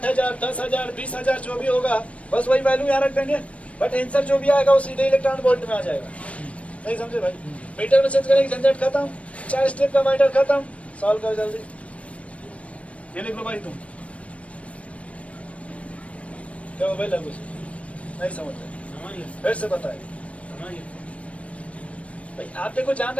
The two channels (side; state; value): right; late; 0.064 ms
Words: 10,000, 20,000 जो भी होगा, बस वही वैल्यू यहाँ रख देंगे। बट आंसर जो भी आएगा वो सीधे इलेक्ट्रॉन वोल्ट में आ जाएगा। नहीं समझे भाई? मीटर में चेंज करेंगे, झंझट खत्म, 4 स्टेप का मैटर खत्म। सॉल्व करो जल्दी। ये लिख लो भाई तुम। क्या हो भाई लगू से? नहीं समझ रहे? फिर से बताए भाई। आप देखो जान